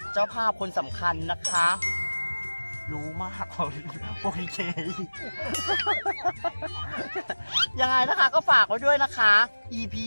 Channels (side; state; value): both; inverted; correlation -1.00